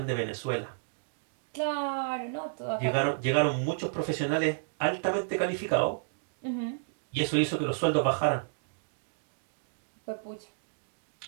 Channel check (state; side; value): silent; left; digital silence